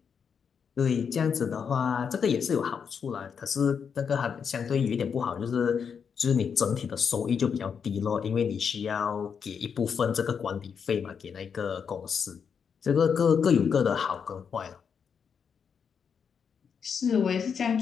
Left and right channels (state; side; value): quieter; right; 6.7 dB